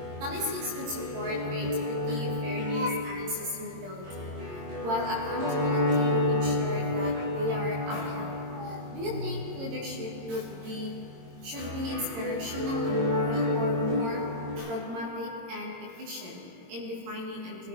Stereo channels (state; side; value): late; left; 22 ms